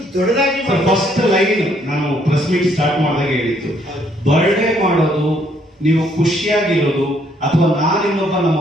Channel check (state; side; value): normal; both; correlation 0.68